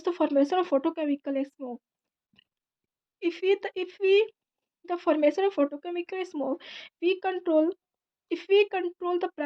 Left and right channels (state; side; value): identical; both; correlation 1.00